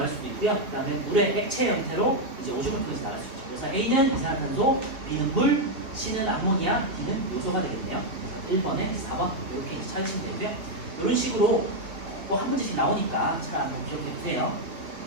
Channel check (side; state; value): left; late; 2.8 ms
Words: 수도 있고요. 그 다음에 물의 액체 형태로 이제 오줌을 통해서 나갈 수 있죠. 그래서 A는 이산화탄소, B는 물, C는 암모니아, D는 요소가 되겠네요. 1번에 4번 이렇게 찾으시면 되고요. 이런 식으로 또 한 문제씩 나오니까 잘 한번 기억해 두세요.